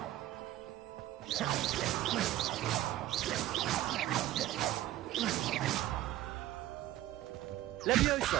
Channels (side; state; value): left; quieter; 14.6 dB